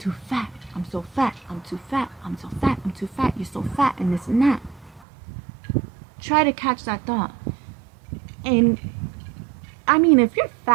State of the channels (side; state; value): left; drops out; at 5.0 s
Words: too fat. I'm so fat. I'm too fat. I'm so fat. I'm too fat. You're so fat, and this and that. Try to catch that thought. And I mean, if you're